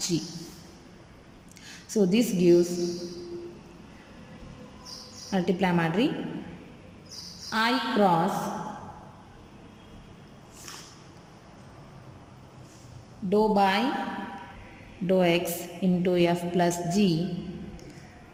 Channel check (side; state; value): both; identical; correlation 1.00